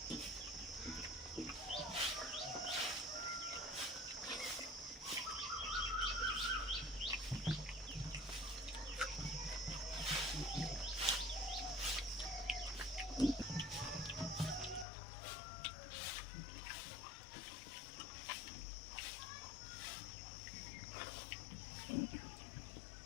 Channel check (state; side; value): drops out; right; at 14.9 s